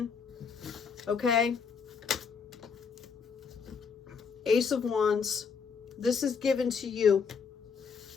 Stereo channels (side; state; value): right; quieter; 5.9 dB